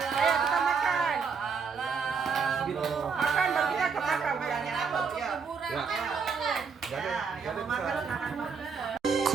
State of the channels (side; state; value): left; quieter; 5.6 dB